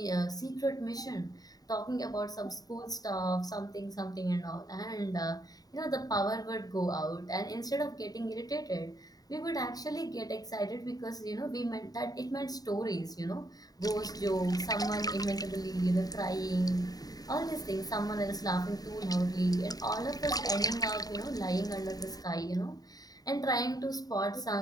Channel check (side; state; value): right; late; 0.18 ms